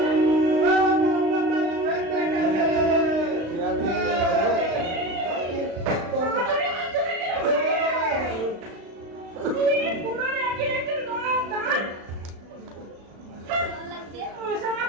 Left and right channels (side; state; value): left; late; 36 ms